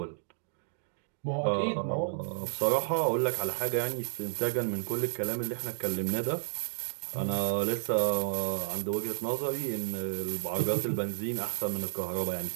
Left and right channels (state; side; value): silent; left; digital silence